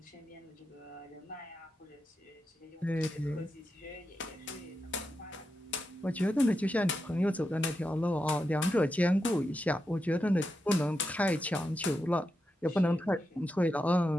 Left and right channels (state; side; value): normal; both; correlation 0.87